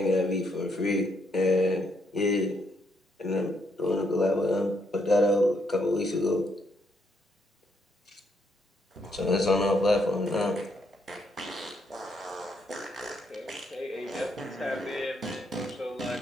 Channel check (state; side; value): normal; both; correlation 0.75